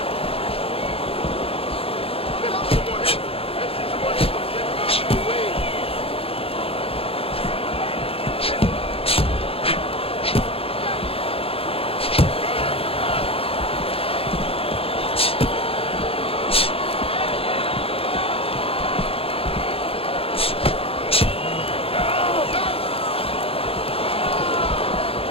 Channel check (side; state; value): right; late; 0.27 ms